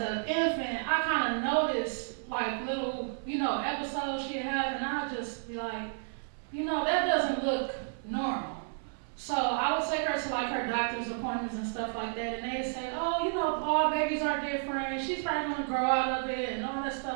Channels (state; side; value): silent; left; 56 dB below the other